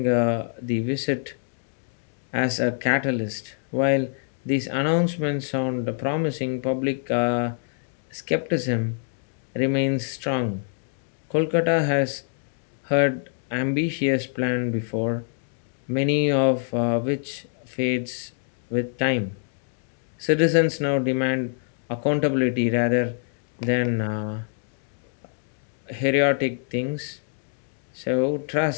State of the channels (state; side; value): silent; right; digital silence